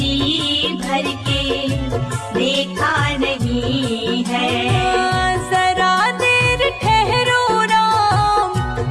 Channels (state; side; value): identical; both; correlation 1.00